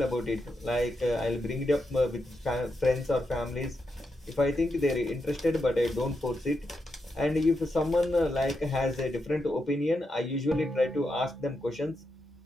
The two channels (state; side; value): normal; both; correlation 0.85